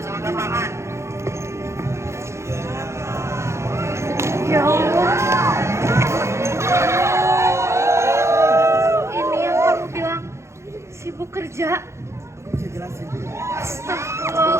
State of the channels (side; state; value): left; late; 0.13 ms